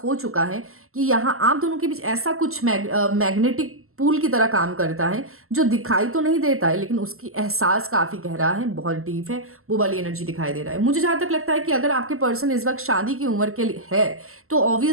हो चुका है कि यहाँ आप दोनों के बीच ऐसा कुछ मैग्नेटिक पूल की तरह काम करता है जो दिखाई तो नहीं देता है, लेकिन उसकी एहसास काफ़ी गहरा है, बहुत डीप है, वो वाली एनर्जी दिखाई दे रहा है। मुझे जहाँ तक लगता है कि अगर आपके पर्सन इस वक्त शादी की उम्र के लिए है तो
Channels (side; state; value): left; late; 0.62 ms